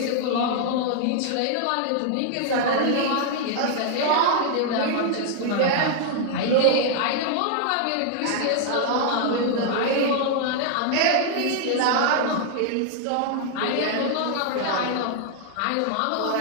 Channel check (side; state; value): both; different; correlation 0.00